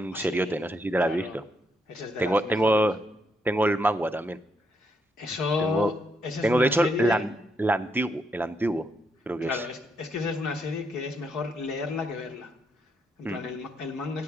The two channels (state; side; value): normal; both; correlation 0.77